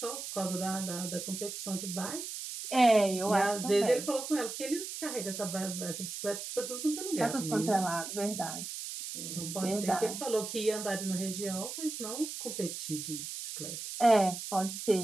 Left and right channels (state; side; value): noise; right; hiss, 7 dB below the sound